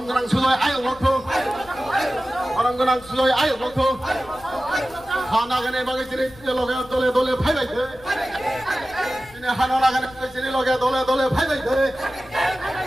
그랑 수도에 아유 놓고 바람 그랑 수도에 아유 놓고 하나 가네 바게 지리 로게 돌에 돌에 파이바이 돼 지네 하나 나가네 지리 로게 돌에 돌에 파이바이 돼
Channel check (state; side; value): noise; left; rumble, 22 dB below the sound